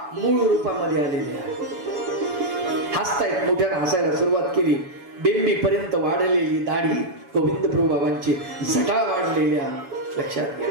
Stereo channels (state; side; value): late; left; 7.0 ms